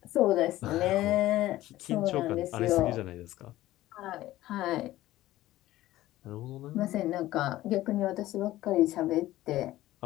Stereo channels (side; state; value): right; quieter; 15.7 dB